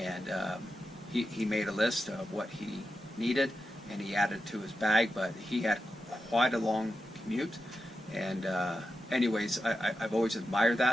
he made a list of what he needed and he added to his bag, but he had quite a long commute. And anyways, I've always admired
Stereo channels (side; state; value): both; normal; correlation 0.89